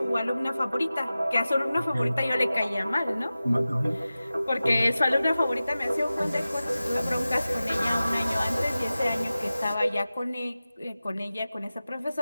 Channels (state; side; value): inverted; both; correlation -0.95